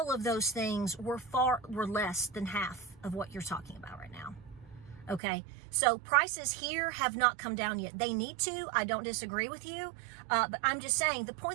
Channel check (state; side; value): drops out; left; at 5.2 s